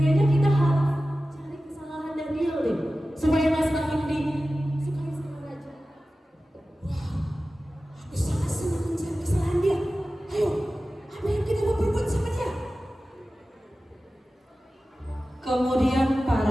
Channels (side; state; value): both; normal; correlation 0.95